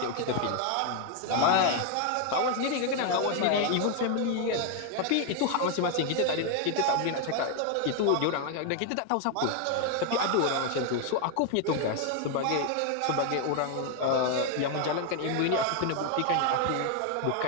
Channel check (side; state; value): both; different; correlation 0.01